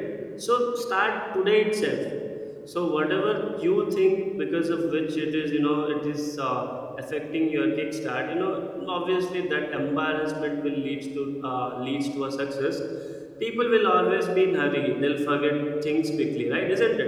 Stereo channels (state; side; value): identical; both; correlation 1.00